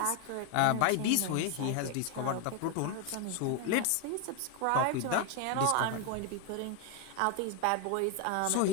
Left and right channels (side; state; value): both; different; correlation 0.01